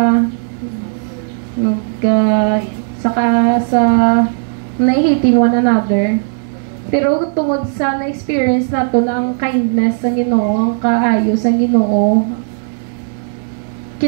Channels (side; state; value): left; silent; digital silence